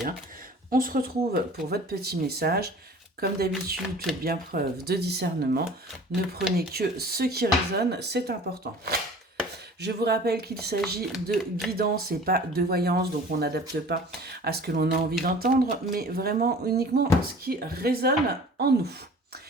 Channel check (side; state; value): both; normal; correlation 0.45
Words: On se retrouve pour votre petit message. Comme d'habitude, faites bien preuve de discernement. Ne prenez que ce qui résonne, c'est important. Je vous rappelle qu'il s'agit de guidance et pas de voyance, donc on n'adapte pas à ce que l'on a envie d'entendre, mais vraiment uniquement ce qui résonne en nous.